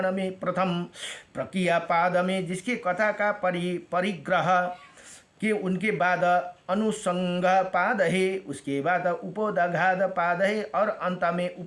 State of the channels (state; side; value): identical; both; correlation 1.00